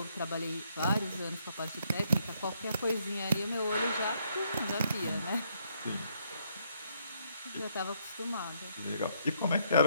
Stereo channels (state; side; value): inverted; both; correlation -0.71